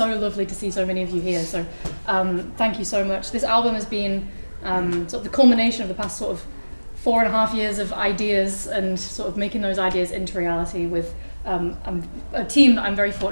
lovely to see so many of you here. So thank you so much. This album has been sort of the culmination of the past sort of 4.5 years of ideas and sort of making those ideas into reality with a team that I'm very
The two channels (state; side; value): inverted; both; correlation -1.00